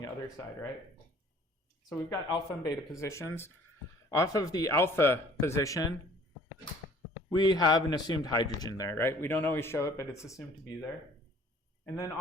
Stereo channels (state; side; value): normal; both; correlation 0.54